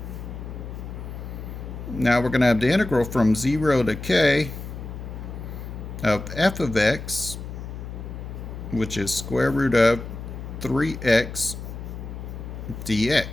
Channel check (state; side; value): noise; left; hum, 9 dB below the sound